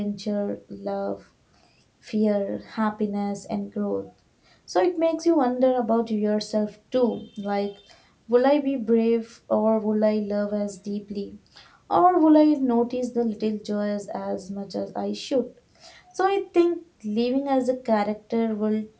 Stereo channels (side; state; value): both; identical; correlation 1.00